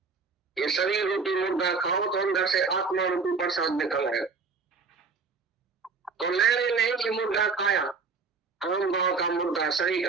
ये शरीर रूपी मुर्गा खाओ तो अंदर से आत्मा रूपी प्रसाद निकल आएगा। तो लेने ने ये मुर्गा खाया, आम भाव का मुर्गा, शरीर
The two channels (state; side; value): quieter; left; 4.8 dB